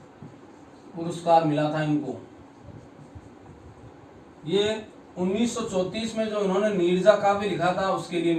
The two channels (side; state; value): both; identical; correlation 1.00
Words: पुरस्कार मिला था इनको। ये 1934 में जो इन्होंने नीरजा काव्य लिखा था उसके लिए